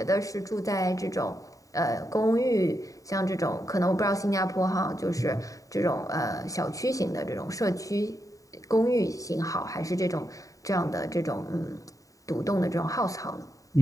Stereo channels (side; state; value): right; late; 0.16 ms